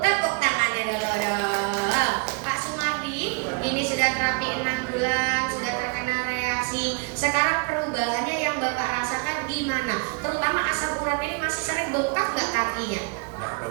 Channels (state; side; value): quieter; left; 31.4 dB